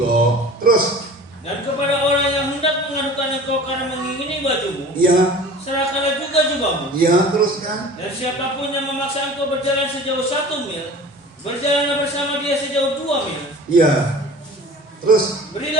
Terus. Dan kepada orang yang hendak mengadukan engkau karena mengingini bajumu, ya, serahkanlah juga jubahmu. Ya, terus kan. Dan siapapun yang memaksa engkau berjalan sejauh 1 mil, berjalanlah bersama dia sejauh 2 mil. Ya. Terus.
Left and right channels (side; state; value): both; normal; correlation 0.41